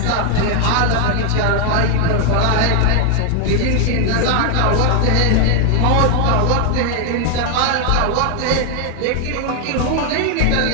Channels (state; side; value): different; both; correlation 0.00